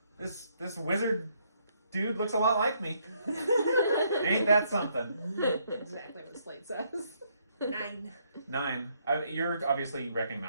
This wizard dude looks a lot like me. Ain't that something? Exactly what Slate says. 9. 9. You're obviously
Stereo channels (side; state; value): both; inverted; correlation -0.72